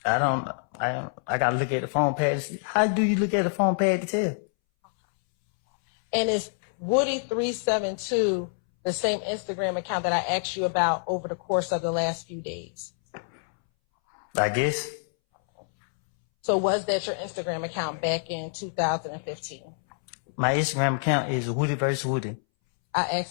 I gotta look at the phone pad to see. How do you look at the phone pad to tell? And is Woody372 the same Instagram account that I asked you about over the course of the last few days? I guess. So was that your Instagram account back in 2015? My Instagram account is Woody vs. Woody. I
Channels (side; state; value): right; silent; 60 dB below the other